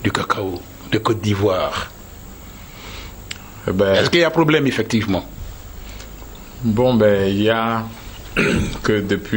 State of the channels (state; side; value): identical; both; correlation 1.00